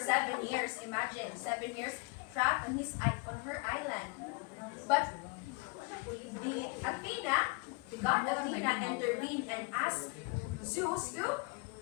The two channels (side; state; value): right; quieter; 30.4 dB